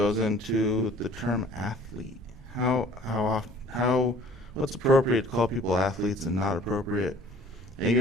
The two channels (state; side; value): normal; both; correlation 0.52